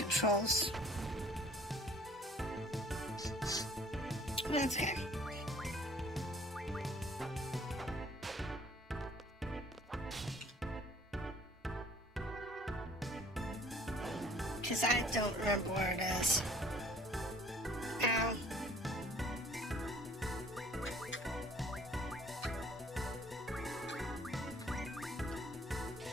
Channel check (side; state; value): both; normal; correlation 0.56